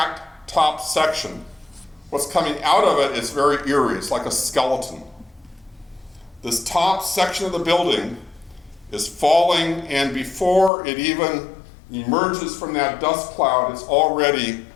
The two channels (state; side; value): drops out; right; at 10.7 s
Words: top section. What's coming out of it is very eerie. It's like a skeleton. This top section of the building is falling, and before it even emerges from that dust cloud, it's already